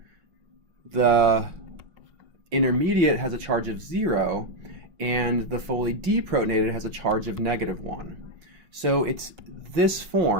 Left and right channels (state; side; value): late; left; 5.5 ms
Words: The intermediate has a charge of 0, and the fully deprotonated has a charge of -1. So it's this